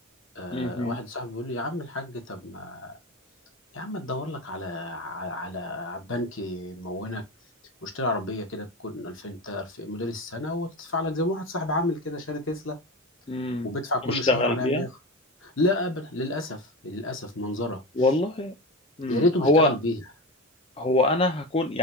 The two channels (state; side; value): normal; both; correlation 0.24